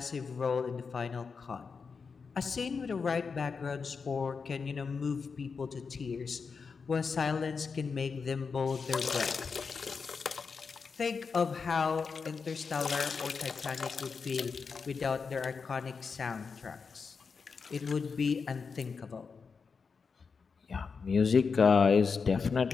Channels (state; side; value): quieter; right; 5.3 dB